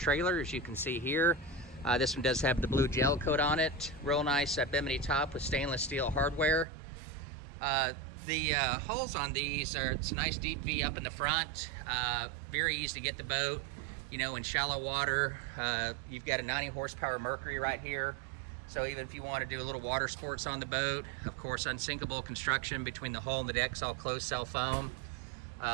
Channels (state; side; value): drops out; left; at 6.7 s